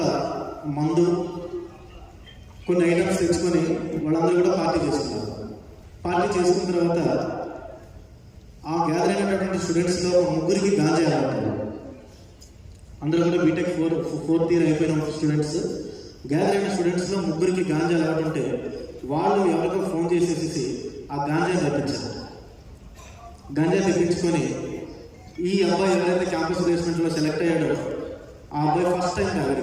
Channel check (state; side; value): identical; both; correlation 1.00